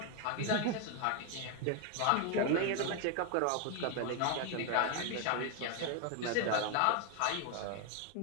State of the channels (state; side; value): different; both; correlation 0.01